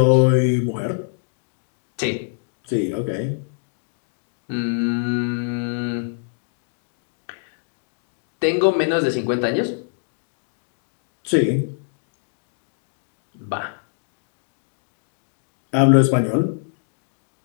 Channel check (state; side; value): silent; right; digital silence